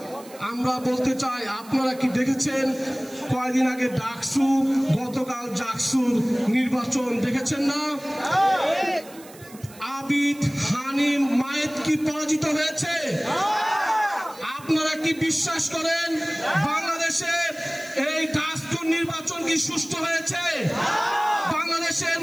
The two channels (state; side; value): noise; right; hiss, 21 dB below the sound